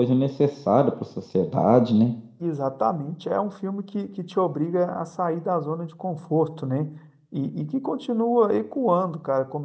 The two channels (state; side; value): identical; both; correlation 1.00